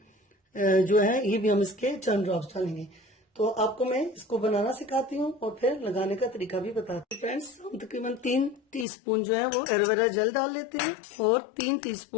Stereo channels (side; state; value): right; drops out; at 8.8 s